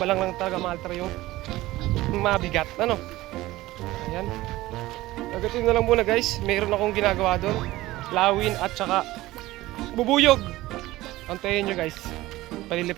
lang talaga maaltra yung mabigat. Ayan. Agatin na lang muna guys. Mayroon akong ginagawa doon. Lawin at saka bubuyog. Antayin nyo guys.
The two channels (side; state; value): left; quieter; 17.5 dB